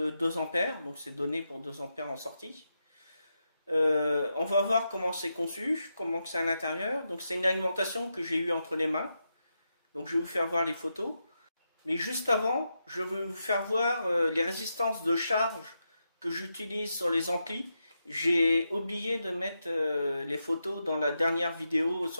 ampères, donc c'est donné pour 2 ampères en sortie. On va voir comment c'est conçu, comment c'est à l'intérieur. Donc c'est une alimentation que j'ai eue entre les mains. Donc je vais vous faire voir les photos. Mais juste avant, je vais vous faire voir les résistances de charge que j'utilise sur les amplis. J'ai oublié de mettre les photos dans la dernière vidéo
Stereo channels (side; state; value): both; inverted; correlation -0.86